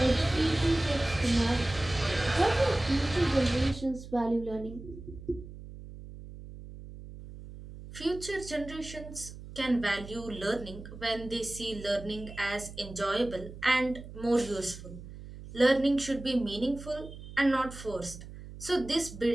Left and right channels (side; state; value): right; noise; hum, 14 dB below the sound